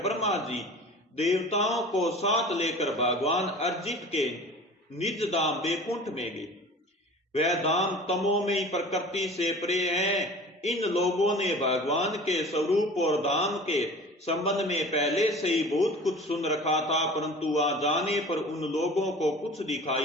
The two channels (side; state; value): both; normal; correlation 0.41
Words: ब्रह्मा जी देवताओं को साथ लेकर भगवान अर्जित के निज धाम वैकुंठ में गए। वह धाम तमोमयी प्रकृति से परे है। इन लोगों ने भगवान के स्वरूप और धाम के संबंध में पहले से ही बहुत कुछ सुन रखा था, परंतु वहां जाने पर उन लोगों को कुछ